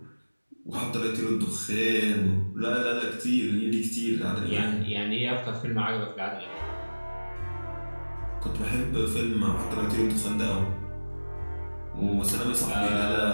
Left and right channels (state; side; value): inverted; both; correlation -1.00